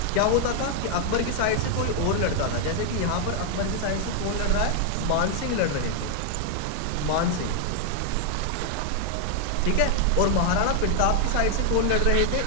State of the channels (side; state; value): both; different; correlation 0.00